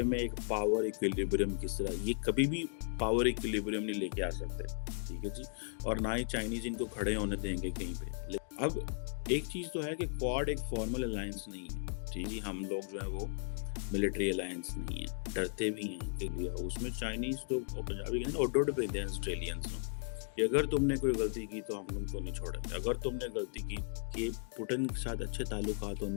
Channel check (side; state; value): right; silent; 54 dB below the other